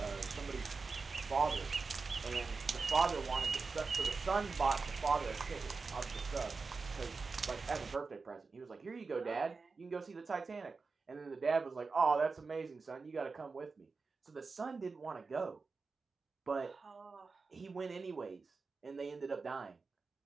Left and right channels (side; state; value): left; quieter; 4.4 dB